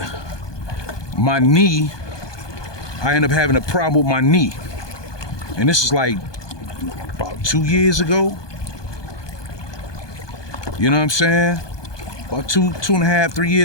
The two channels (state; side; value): late; right; 1.2 ms